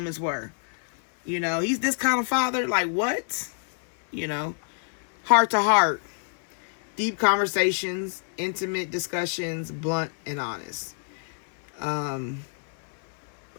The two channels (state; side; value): silent; right; digital silence